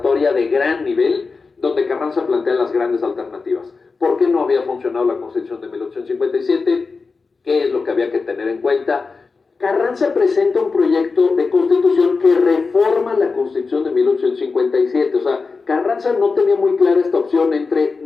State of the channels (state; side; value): quieter; right; 4.4 dB